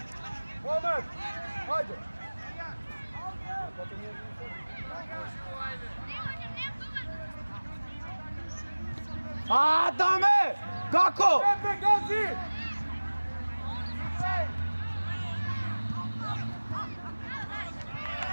Moment! Ajde! A, Dame! Kako? Pepe, Gazi!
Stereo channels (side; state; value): both; inverted; correlation -1.00